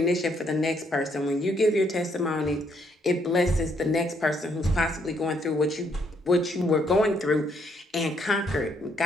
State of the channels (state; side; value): normal; both; correlation 0.71